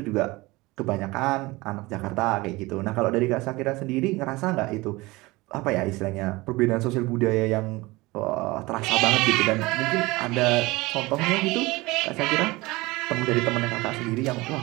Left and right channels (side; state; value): left; quieter; 21.7 dB